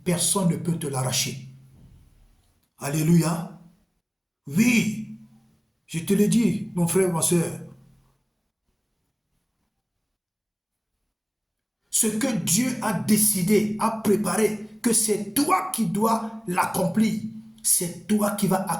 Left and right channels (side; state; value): both; identical; correlation 1.00